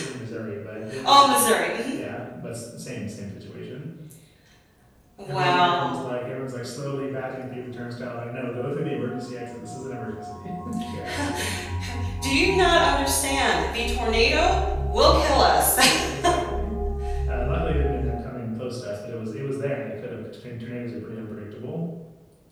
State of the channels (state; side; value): identical; both; correlation 1.00